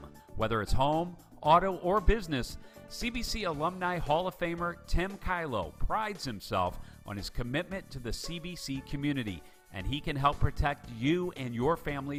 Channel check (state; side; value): identical; both; correlation 1.00